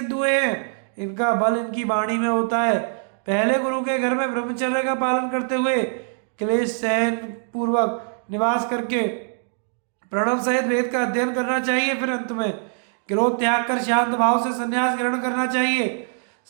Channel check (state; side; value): silent; left; digital silence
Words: हुए हैं। इनका बल इनकी वाणी में होता है। पहले गुरु के घर में ब्रह्मचर्य का पालन करते हुए क्लेश सहन पूर्वक निवास करके प्रणव सहित वेद का अध्ययन करना चाहिए। फिर अंत में क्रोध त्याग कर शांत भाव से संन्यास ग्रहण करना चाहिए।